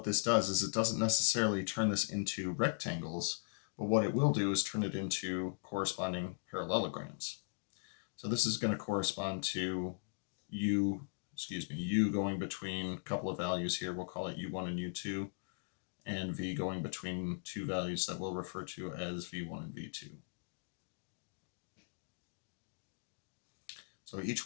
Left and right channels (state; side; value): silent; right; digital silence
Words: this does is it doesn't necessarily turn this into rectangles, but what it will do is turn it into corresponding parallelograms. So this is going to correspond to u going between a couple of values here. We'll call it u1 and u2, and v going between two values that we'll refer to as v1 and v2. So each